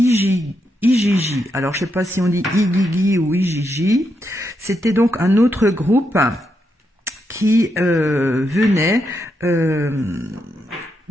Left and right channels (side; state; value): both; normal; correlation 0.82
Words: Alors, je ne sais pas si on dit Igigi ou Igigi. C'était donc un autre groupe qui venait de